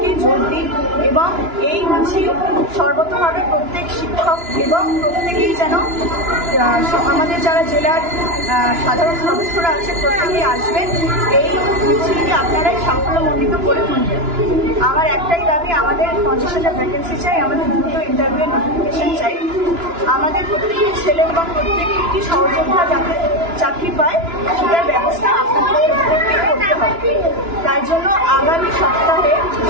যোগ দিন এবং এই মিছিল সর্বতভাবে প্রত্যেক শিক্ষক এবং প্রত্যেকেই যেন আমাদের যারা জেলার সাধারণ সদস্যরা আছে প্রত্যেকেই আসবেন, এই মিছিলকে আপনারাই সাফল্যমণ্ডিত করে তুলবেন। আমার একটাই দাবি, আমাদের 50,000 ভ্যাকেন্সি চাই, আমাদের দ্রুত ইন্টারভিউয়ের নোটিফিকেশন চাই, আমাদের প্রত্যেকটি ছেলে এবং প্রত্যেকটি সহযোদ্ধা যাতে চাকরি পায় সেটার ব্যবস্থা আপনাদের করতে হবে। তাই জন্য আগামী সপ্তাহে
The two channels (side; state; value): left; late; 2.9 ms